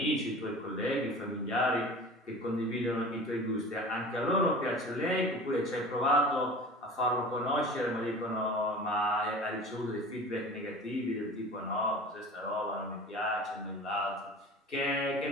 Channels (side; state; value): both; normal; correlation 0.38